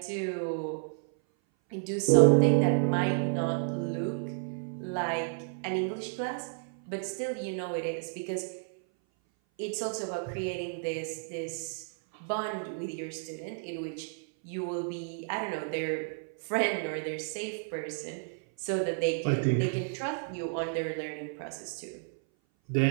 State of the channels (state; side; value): silent; left; 57 dB below the other